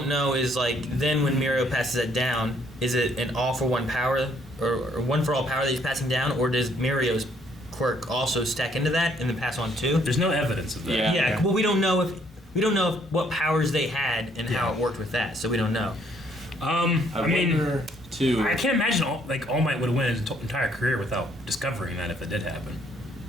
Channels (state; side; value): normal; both; correlation 0.66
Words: know is like then when Mirio passes it down, is it an all for one power or one for all power that he's passing down, or does Mirio's quirk also stack into that and then pass on too? There's no evidence of that. Yeah. Yeah, well, we don't know if what powers they had and how it worked with that, so we don't know. I mean, wonder, too. I can't imagine All Might would have went his entire career without discovering that if it did happen.